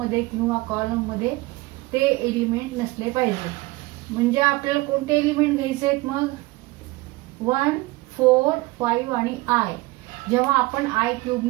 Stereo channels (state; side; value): quieter; left; 21.5 dB